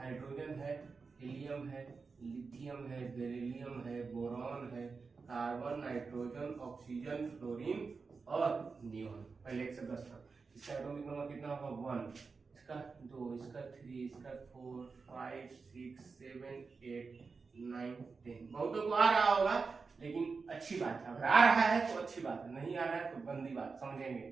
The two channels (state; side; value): quieter; left; 4.7 dB